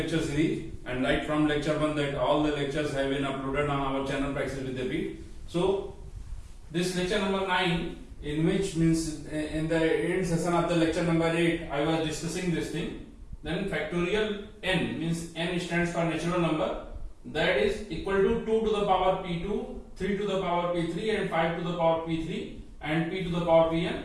series. And right from lecture 1 that all the lectures have been uploaded on our channel Praxis with the Beat. So this lecture number 9, in which means in the end session of the lecture number 8 I was discussing this thing. Then factorial n means n stands for natural number, that is equal to 2 to the power p2, 3 to the power p3 and 5 to the power p3 and p to the power pn.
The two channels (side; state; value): both; identical; correlation 1.00